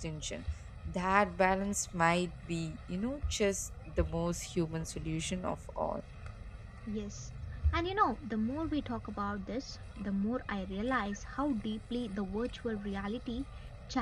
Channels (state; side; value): identical; both; correlation 1.00